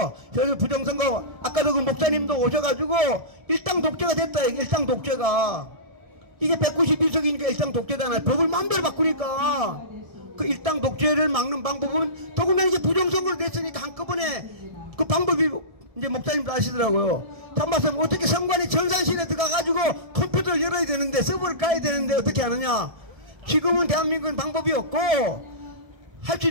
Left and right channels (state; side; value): late; left; 1.7 ms